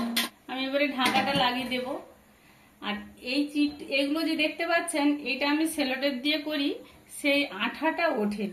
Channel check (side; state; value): both; identical; correlation 1.00